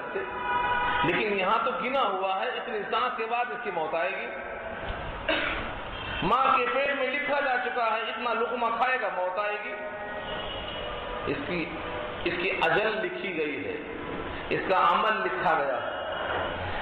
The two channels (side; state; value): both; identical; correlation 1.00